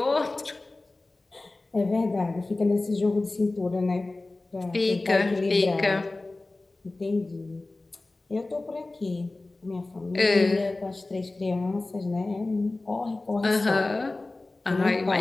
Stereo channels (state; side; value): quieter; right; 3.1 dB